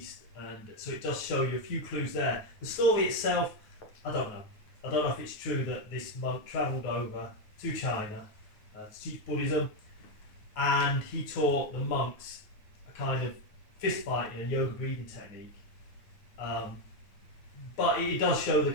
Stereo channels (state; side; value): late; right; 9.2 ms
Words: And so it does show you a few clues there. The story itself, I don't know. I don't know if it's true that this monk travelled over to China to teach Buddhism, and he taught the monks a kind of fist fighting and yoga breathing technique. But it does show the